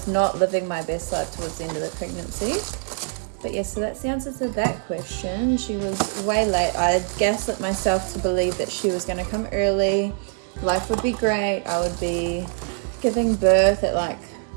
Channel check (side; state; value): left; silent; 57 dB below the other